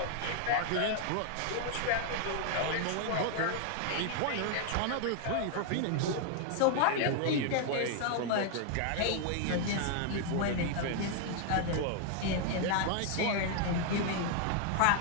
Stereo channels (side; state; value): both; different; correlation 0.00